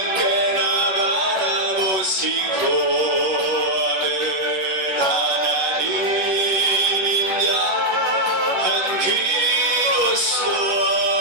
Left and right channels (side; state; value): left; late; 11 ms